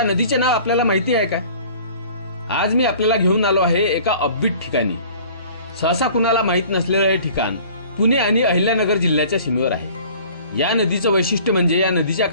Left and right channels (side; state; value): both; inverted; correlation -0.49